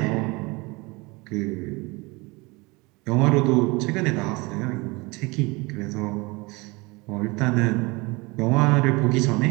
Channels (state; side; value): quieter; left; 25.2 dB